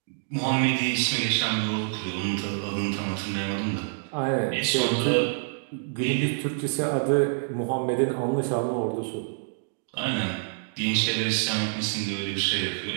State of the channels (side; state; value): left; silent; digital silence